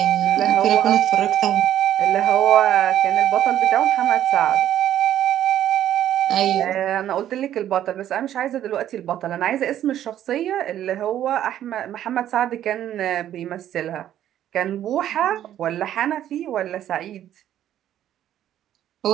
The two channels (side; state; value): left; quieter; 11.4 dB